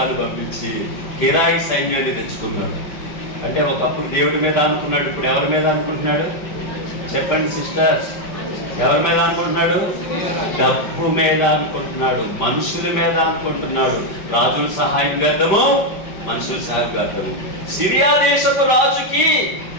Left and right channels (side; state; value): right; late; 5.1 ms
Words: పంపించి కిరాయి సైన్యాన్ని తెచ్చుకున్నాడు. అంటే ఒకప్పుడు దేవుడి మీద అనుకున్నాడు, ఇప్పుడు ఎవరి మీద అనుకుంటున్నాడు? చెప్పండి సిస్టర్స్, ఎవరి మీద అనుకుంటున్నాడు? డబ్బు మీద అనుకుంటున్నాడు, మనుషుల మీద అనుకుంటున్నాడు. రాజుల సహాయం చేద్దాము, మనుషుల సహాయం చేద్దాము. సిరియా దేశపు రాజుకి